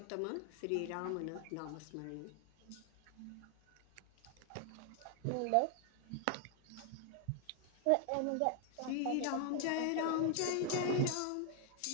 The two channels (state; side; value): different; both; correlation 0.00